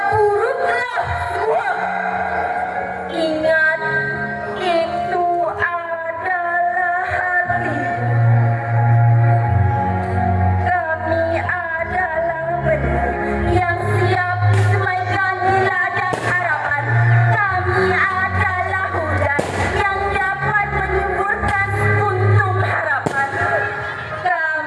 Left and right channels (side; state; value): both; identical; correlation 1.00